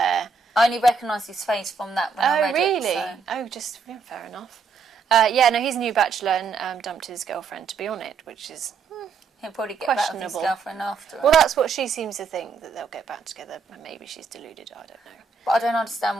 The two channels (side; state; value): left; quieter; 5.2 dB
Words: I only recognised his face from that when I read really? it. So. Oh, just fair enough. He's a new Bachelor and dumped his girlfriend to be on it, which is He'll probably get back with his questionable. girlfriend after. Well, that's what she seems to think, that they'll get back together. Maybe she's deluded, I don't know. But I don't understand